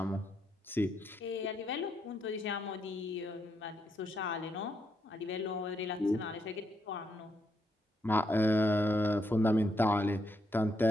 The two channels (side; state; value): both; normal; correlation 0.78